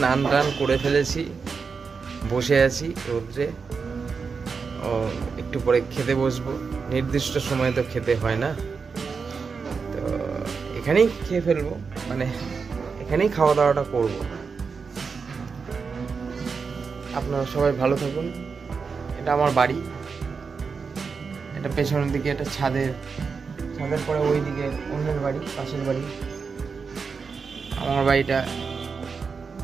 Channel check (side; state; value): left; quieter; 5.3 dB